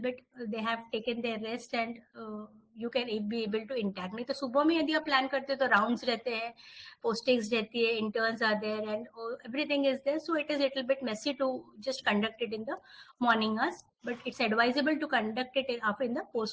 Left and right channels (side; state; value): both; identical; correlation 1.00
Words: they have taken their rest, and you can be able to interact. नहीं तो सुबह में यदि आप plan करते तो rounds रहते हैं, postings रहती है, interns are there, and everything is there. So it is little bit messy to just conduct it in the morning hours, but it's advisable to conduct it in the